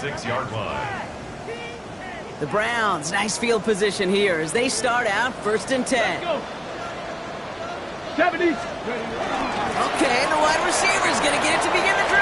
line. The Browns, nice field position here as they start out 1st and 10. Go. 70. Okay, the wide receiver's going to get it to begin the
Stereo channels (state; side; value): identical; both; correlation 1.00